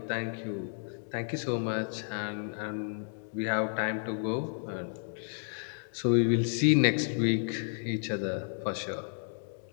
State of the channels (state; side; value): silent; right; digital silence